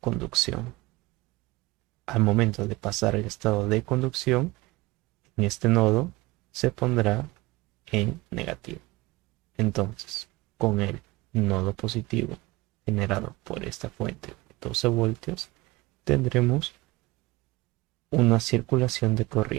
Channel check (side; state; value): left; quieter; 21.3 dB